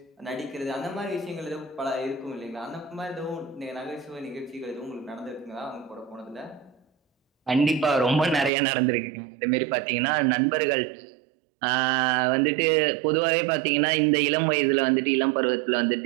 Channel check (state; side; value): drops out; left; at 8.5 s